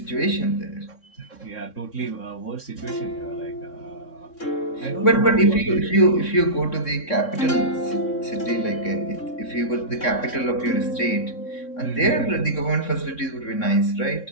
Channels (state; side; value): late; right; 3.6 ms